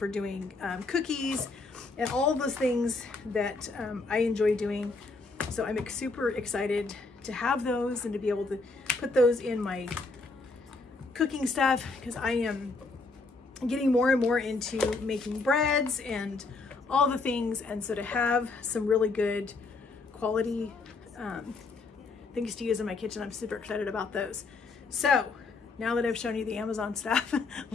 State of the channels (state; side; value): quieter; right; 3.8 dB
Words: doing cookies and all those things that I enjoy doing. So I'm super excited to have those and to be able to put those in my cooking stuff, because I am getting more and more into making breads and all the things. And so to have some really good quality things to use in my kitchen, I'm super excited about those. So now that I've shown you the Amazon stuff,